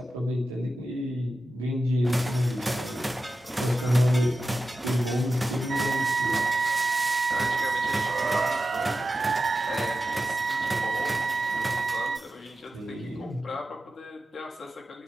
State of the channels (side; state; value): both; normal; correlation 0.91